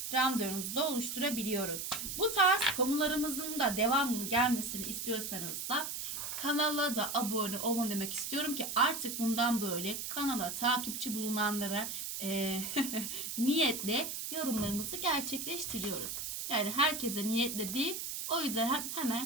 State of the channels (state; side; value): noise; right; hiss, 5 dB below the sound